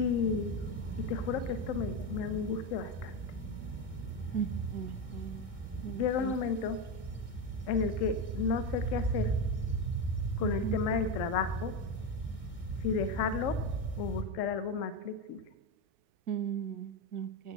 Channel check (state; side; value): late; left; 1.6 ms